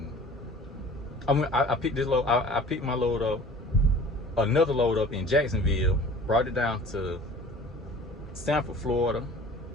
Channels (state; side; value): normal; both; correlation 0.45